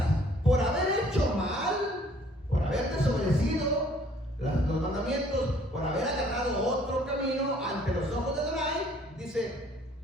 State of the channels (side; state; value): both; normal; correlation 0.59